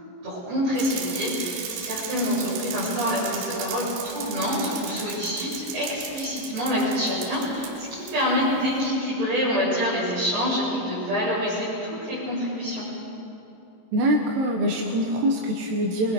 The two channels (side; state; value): left; late; 23 ms